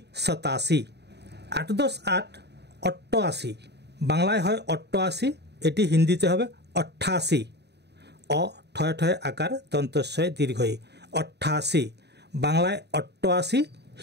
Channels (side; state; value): left; late; 0.49 ms